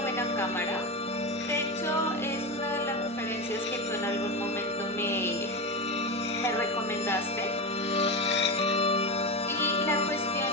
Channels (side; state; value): both; normal; correlation 0.17